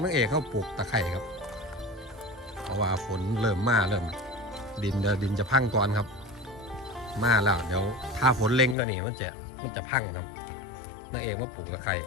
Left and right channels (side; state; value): right; drops out; at 8.8 s